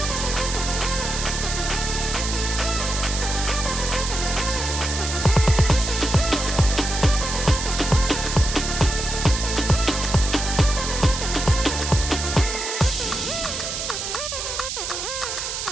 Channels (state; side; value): noise; right; hiss, 4 dB below the sound